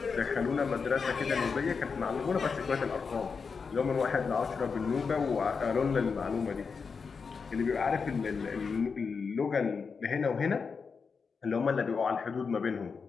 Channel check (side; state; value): right; quieter; 5.3 dB